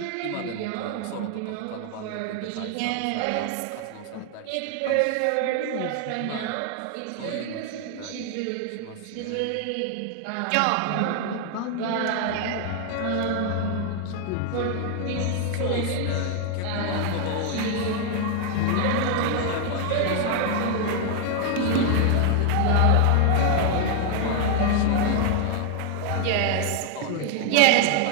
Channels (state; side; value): different; both; correlation 0.00